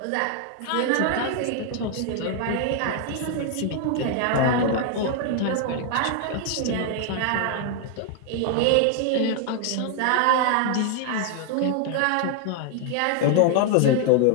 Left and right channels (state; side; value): different; both; correlation 0.00